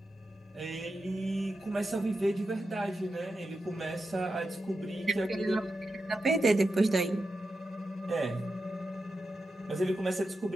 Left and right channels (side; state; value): both; normal; correlation 0.89